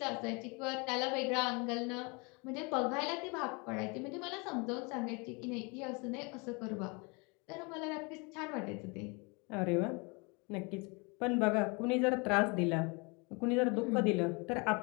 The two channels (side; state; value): right; quieter; 30.3 dB